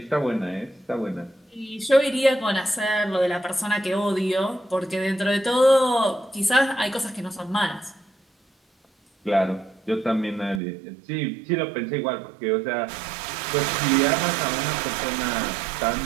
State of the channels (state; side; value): drops out; left; at 10.6 s